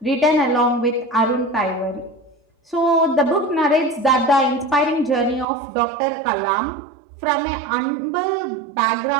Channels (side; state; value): left; drops out; at 5.5 s